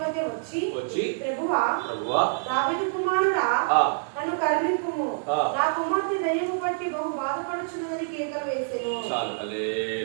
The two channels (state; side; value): silent; left; 58 dB below the other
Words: వచ్చి ప్రభువా దావీదు కుమారుడా నన్ను కరుణింపుము, నా కుమార్తె దయ్యము పట్టి బహు బాధపడుచున్నదని కేకలు వేసెను.